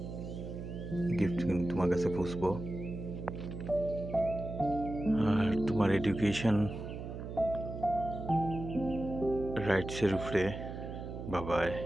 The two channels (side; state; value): right; noise; hum, 8 dB below the sound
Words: গিফট তোমার কাছে পৌঁছবো। আর তোমার এডুকেশন রাইটসের উপরে বাবাই